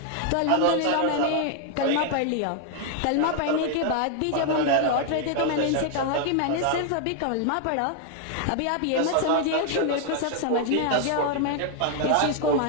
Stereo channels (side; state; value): both; different; correlation 0.00